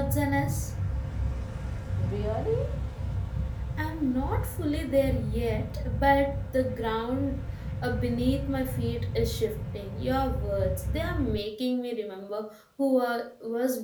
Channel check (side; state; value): both; identical; correlation 1.00